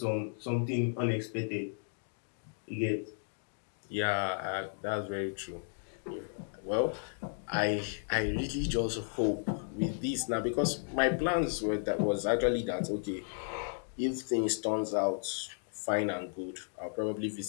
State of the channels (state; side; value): silent; right; digital silence